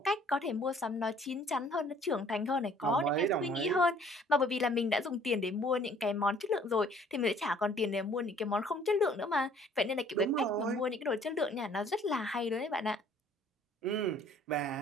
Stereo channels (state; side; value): normal; both; correlation 0.57